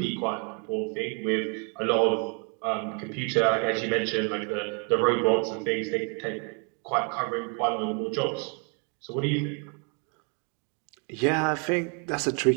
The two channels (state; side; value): quieter; left; 37.3 dB